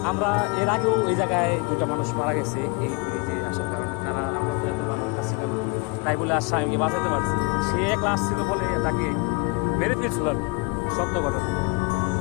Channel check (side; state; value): right; quieter; 28.7 dB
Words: আমরা এর আগেও এই জায়গায় 2টা মানুষ মারা গেছে এই ব্রিজে আসার কারণে। তারা আমরা ছিলাম তাই বলে আর স্বামীকে বাঁচাতে পারছি। সে একলা আসছিল বলে তাকে মেরে ফেলছিল আর কি, সত্য ঘটনা।